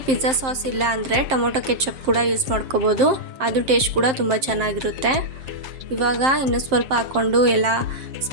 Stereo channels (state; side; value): late; left; 7.6 ms